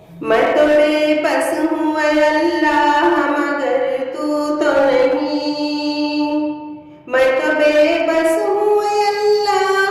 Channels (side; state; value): both; identical; correlation 1.00